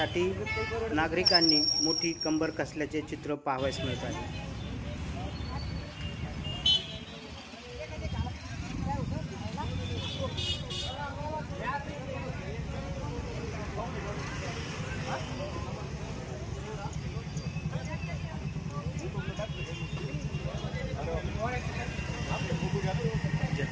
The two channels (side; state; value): both; identical; correlation 1.00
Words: नागरिकांनी मोठी कंबर कसल्याचे चित्र पाहावयास मिळत आहे।